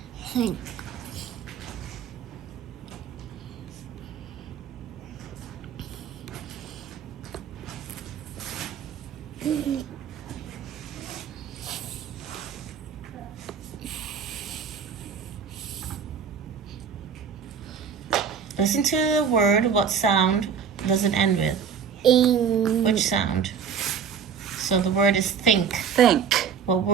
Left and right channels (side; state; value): left; quieter; 6.8 dB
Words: Think. Listen to the word. What sound does it end with? Which sound? So the word is think. Think. What